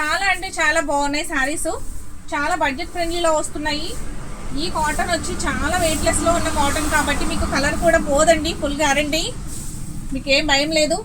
అంటే చాలా బాగున్నాయి శారీస్. చాలా బడ్జెట్ ఫ్రెండ్లీలో వస్తున్నాయి. ఈ కాటన్ వచ్చి చాలా వెయిట్ లెస్ లో ఉన్న కాటన్ కాబట్టి మీకు కలర్ కూడా పోదండి. ఫుల్ గ్యారంటీ, మీకు ఏం భయం లేదు.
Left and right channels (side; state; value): both; identical; correlation 1.00